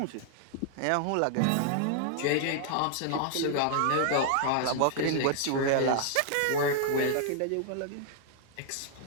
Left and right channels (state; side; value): different; both; correlation -0.01